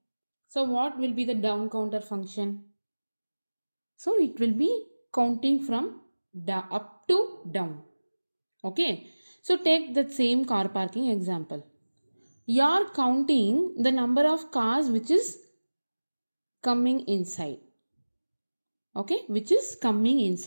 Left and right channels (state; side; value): inverted; both; correlation -1.00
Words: So what will be the down counter function? So it will be counting from up to down. Okay. So take that same car parking example. You are counting the number of cars which is coming inside. Okay, which is coming